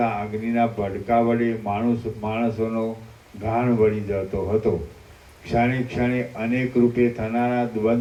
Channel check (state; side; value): identical; both; correlation 1.00